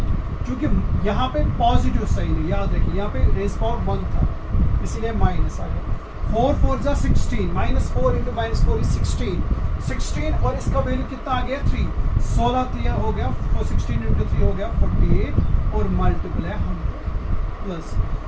क्योंकि यहाँ पे पॉजिटिव साइन है, याद रखिए यहाँ पे रेज़ पावर 1 था इसीलिए माइनस आ गया, 4 4 जा 16, -4 इंटू -4 इज 16 और इसका वैल्यू कितना आ गया 3, 16 3 हो गया, 16 इंटू 3 हो गया 48 और मल्टीपल है 100, प्लस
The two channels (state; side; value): identical; both; correlation 1.00